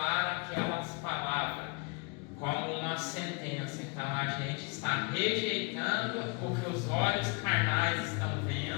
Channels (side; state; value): right; quieter; 31.6 dB